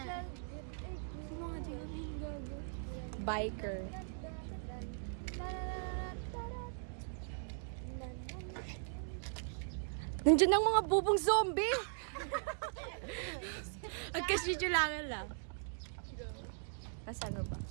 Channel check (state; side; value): silent; left; digital silence